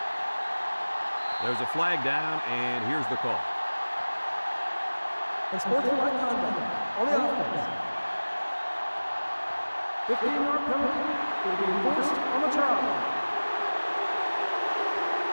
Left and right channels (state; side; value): inverted; both; correlation -1.00